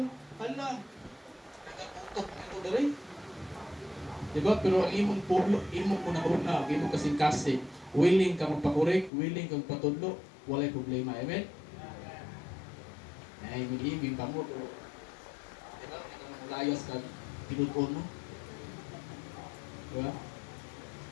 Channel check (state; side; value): drops out; right; at 9.1 s